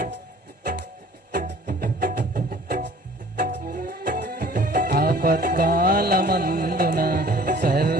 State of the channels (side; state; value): both; normal; correlation 0.51